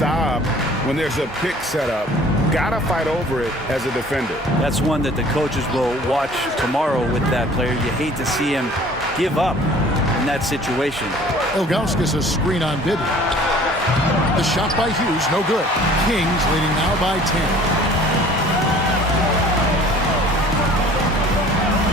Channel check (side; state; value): both; normal; correlation 0.50